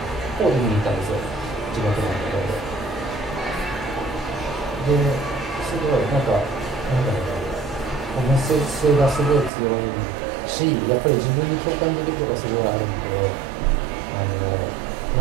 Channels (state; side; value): drops out; left; at 9.5 s